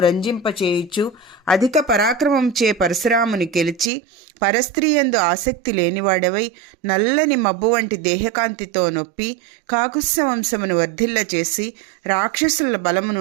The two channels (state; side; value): drops out; left; at 3.9 s